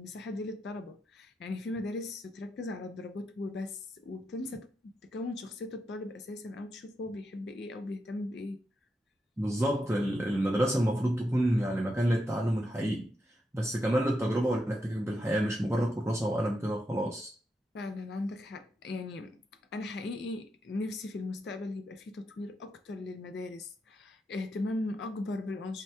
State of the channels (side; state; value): both; normal; correlation 0.84